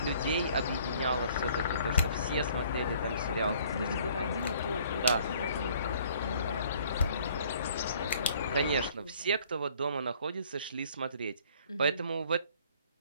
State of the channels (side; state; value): both; inverted; correlation -0.57